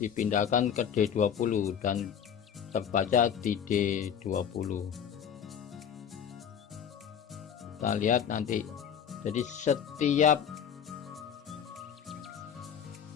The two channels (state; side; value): quieter; right; 8.3 dB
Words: ke D20 dan terbaca di D20. Kita lihat nanti, jadi setiap